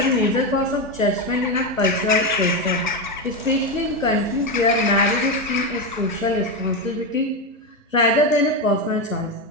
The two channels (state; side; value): normal; both; correlation 0.12